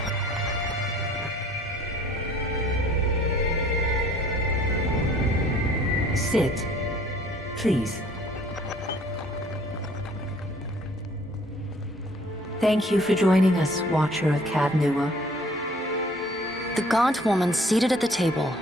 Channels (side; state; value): both; normal; correlation 0.56